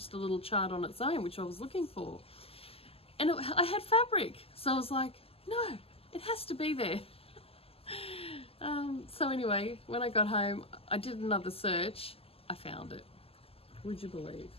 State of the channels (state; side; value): late; right; 0.28 ms